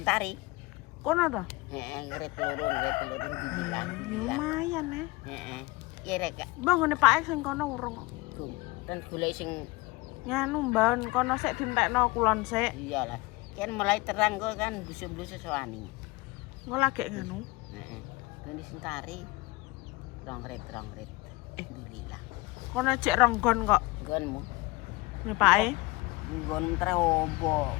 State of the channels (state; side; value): quieter; right; 22.1 dB